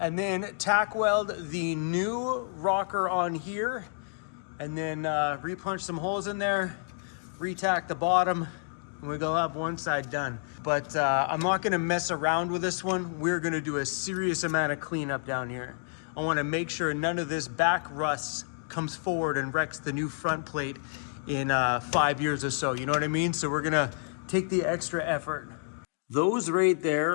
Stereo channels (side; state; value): right; silent; digital silence